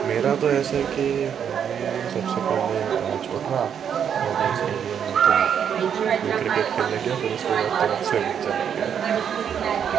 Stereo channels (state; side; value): quieter; left; 8.2 dB